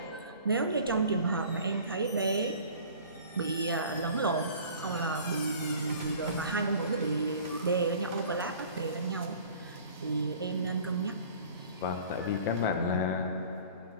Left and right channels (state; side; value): inverted; both; correlation -0.46